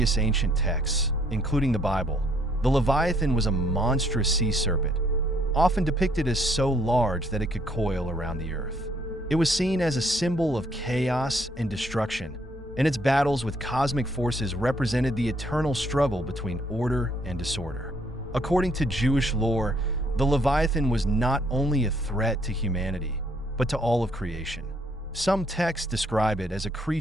ancient texts, including the Bible, the Leviathan was a monstrous sea serpent, often depicted as so large that it could coil around the earth. It was seen as a symbol of chaos and destruction, and its battles with cosmic forces represented the eternal struggle between order and disorder. According to Jewish lore, the Leviathan was not only a threat to humanity, but to all of creation. Some texts describe it as a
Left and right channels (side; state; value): both; normal; correlation 0.67